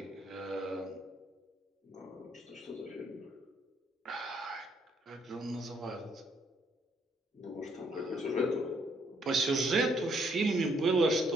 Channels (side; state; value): both; normal; correlation 0.70